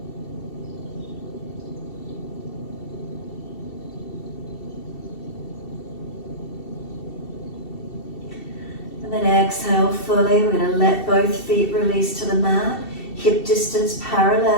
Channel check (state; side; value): late; right; 2.7 ms